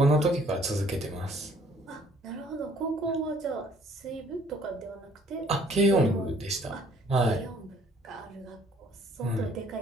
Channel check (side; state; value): both; normal; correlation 0.59